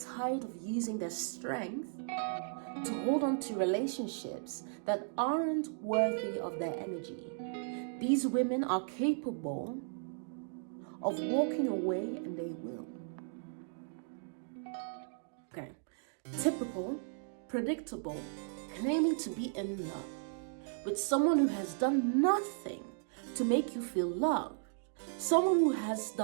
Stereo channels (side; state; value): left; silent; digital silence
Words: of using their strength to hold on to relationships that aren't worthy of their energy. These women are capable of walking away, and they will. Okay. Typical, predictable, claiming to be in love with someone who has done nothing to make you feel loved. Someone who has